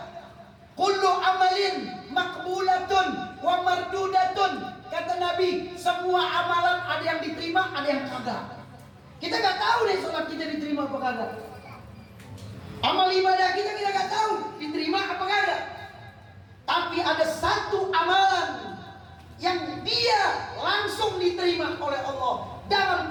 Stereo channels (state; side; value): identical; both; correlation 1.00